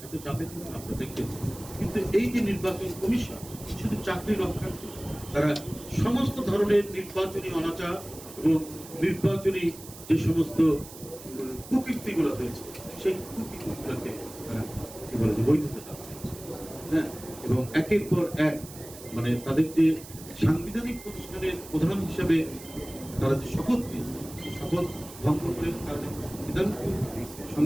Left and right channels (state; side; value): noise; right; hiss, 16 dB below the sound